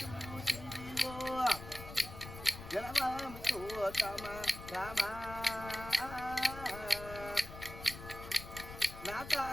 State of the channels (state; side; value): noise; left; rumble, 12 dB below the sound